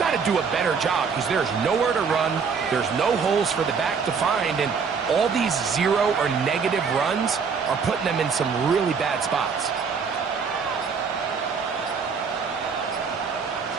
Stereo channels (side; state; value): left; quieter; 5.8 dB